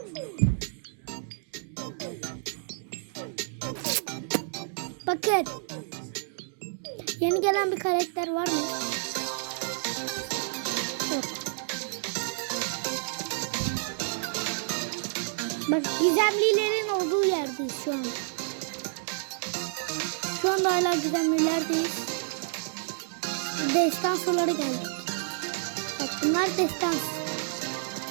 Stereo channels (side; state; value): left; silent; digital silence